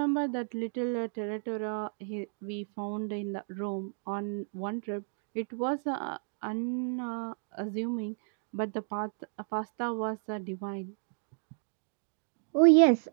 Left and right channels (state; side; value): silent; left; digital silence